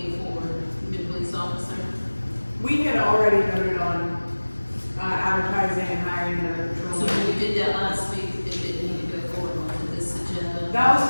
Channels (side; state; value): both; inverted; correlation -1.00